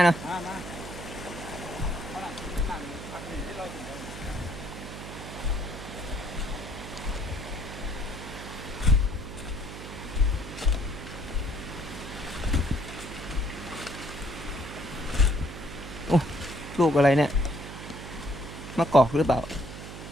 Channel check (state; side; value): noise; right; hum, 10 dB below the sound